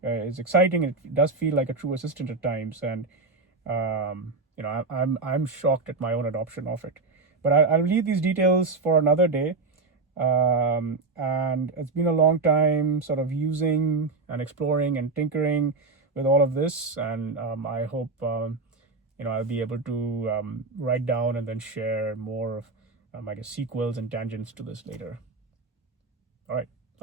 is exciting. It does feel like a true assistant at times, and I'm shocked at my own adoption of it. But I'll leave these details for another day. And it's been a long time sort of using and exploring and tinkering with all of this, and I hope I'll be able to write down and then share more of I guess sequels and tangents to this later. All right,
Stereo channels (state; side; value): quieter; left; 3.8 dB